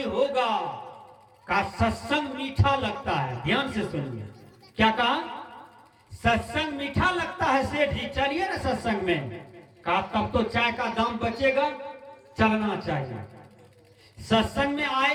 होगा, का सत्संग मीठा लगता है। ध्यान से सुनिए, क्या कहा? सत्संग मीठा लगता है सेठ जी, चलिए ना सत्संग में। कहा तब तो चाय का दाम बचेगा, चलना चाहिए। सत्संग में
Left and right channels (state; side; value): identical; both; correlation 1.00